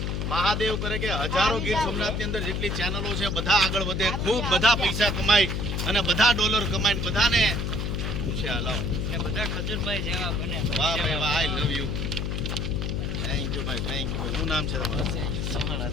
મહાદેવ કરે કે હજારો ગીર સોમનાથની અંદર જેટલી ચેનલો છે બધા આગળ વધે, ખૂબ બધા પૈસા કમાય અને બધા ડોલર કમાય, બધાને છે હલાવ બધા ખજૂરભાઈ જેવા બને. વાહ ભાઈ વાહ, આઈ લવ યુ. થેન્ક યુ ભાઈ, થેન્ક યુ ભાઈ. શું નામ છે તમારું?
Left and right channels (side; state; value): left; noise; hum, 1 dB below the sound